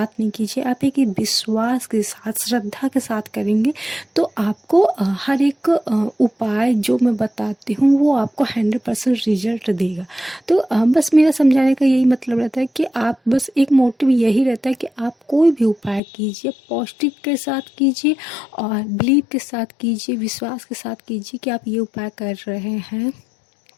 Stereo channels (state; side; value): drops out; right; at 16.0 s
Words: नहीं कीजिए, आप एक विश्वास के साथ, श्रद्धा के साथ करेंगे, तो आपको हर एक उपाय जो मैं बताती हूँ वो आपको 100% रिजल्ट देगा। तो बस मेरा समझाने का यही मतलब रहता है कि आप बस एक मोटिव यही रहता है कि आप कोई भी उपाय कीजिए, पॉजिटिव के साथ कीजिए और बिलीव के साथ कीजिए, विश्वास के साथ कीजिए कि आप ये उपाय कर रहे हैं